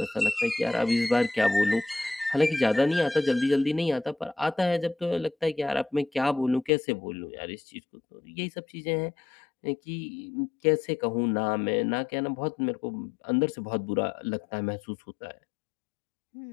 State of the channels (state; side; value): drops out; right; at 6.7 s